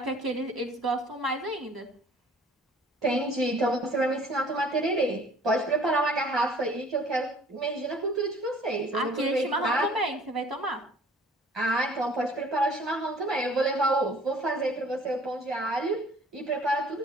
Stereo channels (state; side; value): normal; both; correlation 0.53